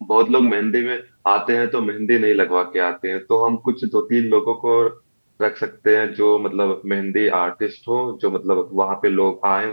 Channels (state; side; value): inverted; both; correlation -1.00